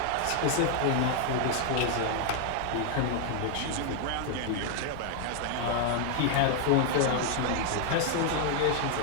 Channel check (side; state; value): both; different; correlation 0.00